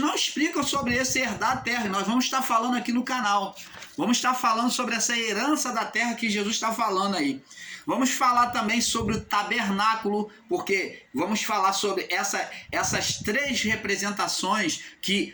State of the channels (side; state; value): both; identical; correlation 1.00